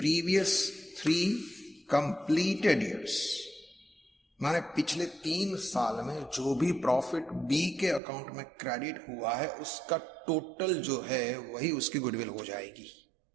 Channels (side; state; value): left; drops out; at 8.0 s